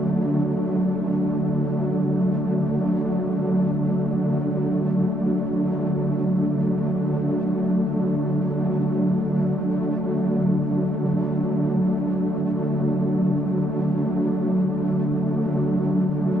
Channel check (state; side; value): normal; both; correlation 0.75